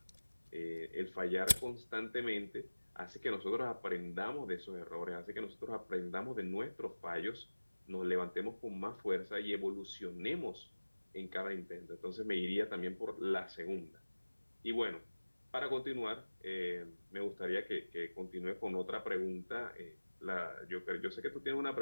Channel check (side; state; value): both; inverted; correlation -1.00